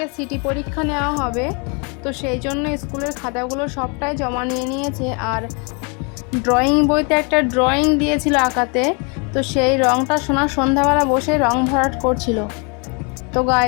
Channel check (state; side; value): quieter; right; 34.2 dB